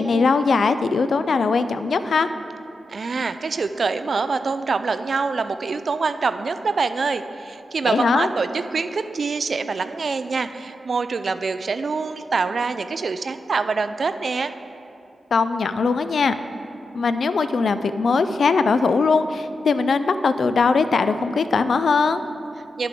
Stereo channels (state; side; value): normal; both; correlation 0.86